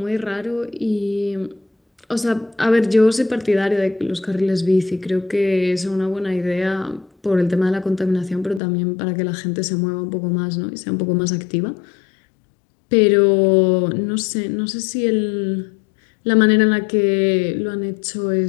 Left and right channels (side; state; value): right; drops out; at 8.6 s